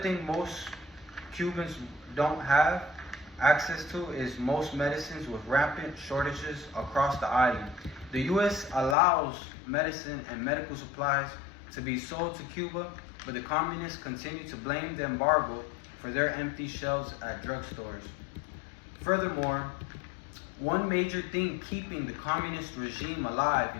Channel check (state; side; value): drops out; right; at 9.0 s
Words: most Cubans don't have access to is most medicines, with rampant shortages across the island. The U.S. allows medicine and medical supplies to be sold to Cuba, but the communists continue to blame the embargo for their empty shelves at drugstores. Furthermore, one major thing keeping the communist regime alive